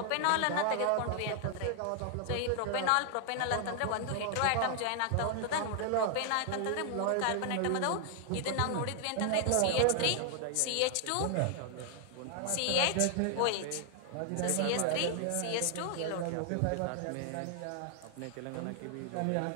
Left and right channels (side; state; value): both; different; correlation 0.00